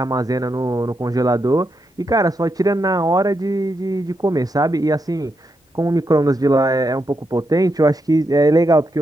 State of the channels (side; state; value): both; normal; correlation 0.83